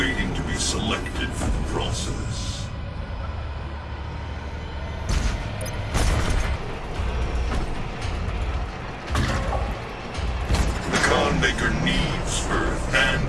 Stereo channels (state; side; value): identical; both; correlation 1.00